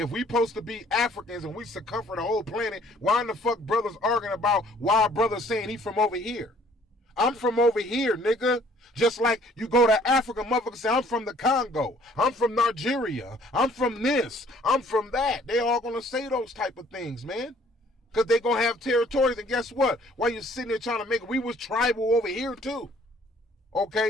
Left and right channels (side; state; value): both; normal; correlation 0.58